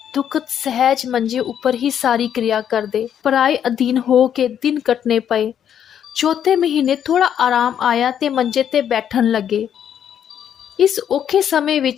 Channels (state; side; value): quieter; right; 9.3 dB